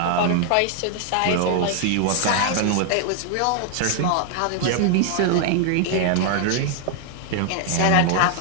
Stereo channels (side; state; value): both; different; correlation 0.00